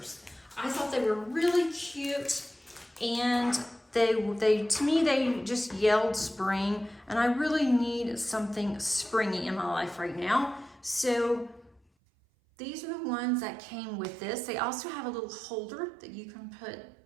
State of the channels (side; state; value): left; drops out; at 11.8 s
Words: I thought they were really cute, and they to me they just yelled spring, and I really need something springy in my life right now. So these are the ones that came with this. They also have a little holder that you can put